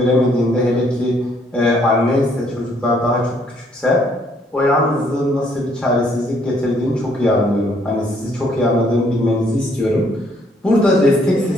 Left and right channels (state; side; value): normal; both; correlation 0.67